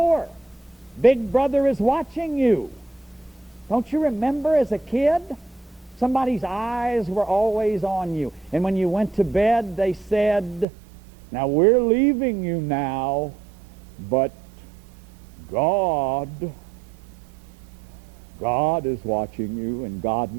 Big Brother is watching you. Don't you remember as a kid? Somebody's eyes were always on you. And when you went to bed, they said, now we're leaving you now, but God is watching you, and God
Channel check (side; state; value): left; drops out; at 10.7 s